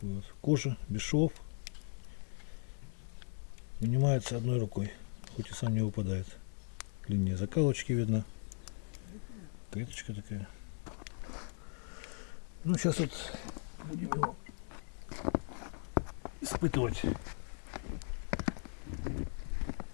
вот. Кожа, без швов. Вынимается одной рукой, хоть и сам не выпадает. Линия закалочки видно. Клеточка такая. Ну, сейчас вот будем его испытывать.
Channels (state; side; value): silent; right; 52 dB below the other